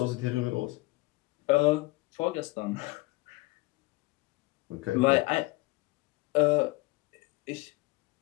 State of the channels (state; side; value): quieter; right; 22.4 dB